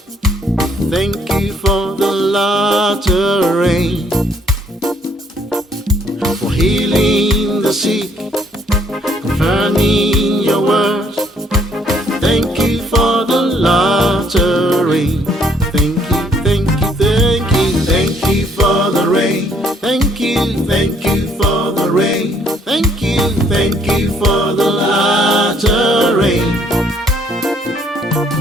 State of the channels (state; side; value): normal; both; correlation 0.65